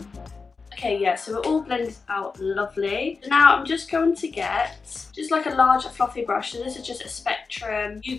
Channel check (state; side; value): quieter; right; 4.6 dB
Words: Okay, yeah, so we're all blended out lovely. So now I'm just going to get just like a large fluffy brush. So this is just a Spectrum